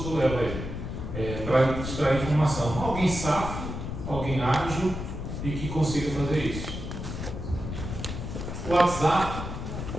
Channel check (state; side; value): noise; left; rumble, 6 dB below the sound